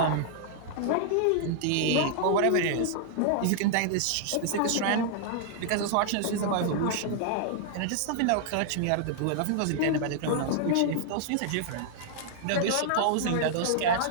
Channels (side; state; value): both; different; correlation -0.01